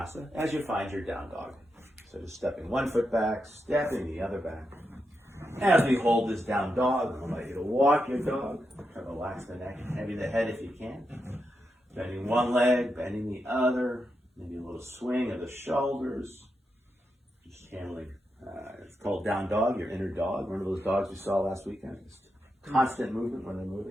as you find your down dog. So just stepping 1 foot back, stepping the other back. As we hold this down dog, I'll invite you to walk your dog. Try to relax the neck, heavy the head if you can. Bending one leg, bending the other. Maybe a little swing of the shoulders. Just channeling. It's called down dog, your inner dog. One of those dogs we saw last weekend. Just constant movement when they're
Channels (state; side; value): normal; both; correlation 0.86